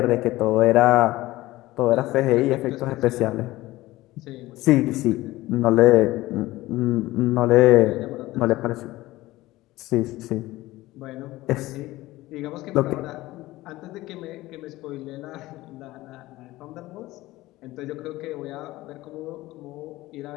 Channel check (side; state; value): right; quieter; 17.9 dB